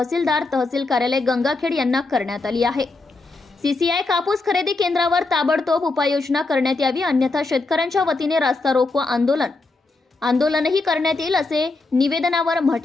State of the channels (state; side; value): quieter; right; 3.4 dB